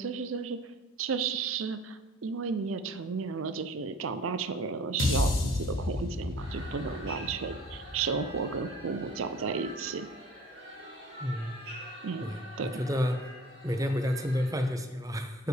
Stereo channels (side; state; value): both; normal; correlation 0.47